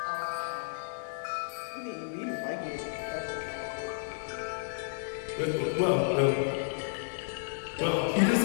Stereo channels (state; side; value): silent; right; digital silence